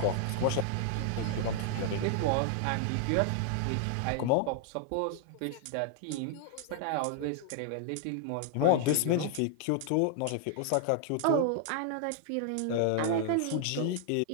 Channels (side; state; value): both; different; correlation 0.00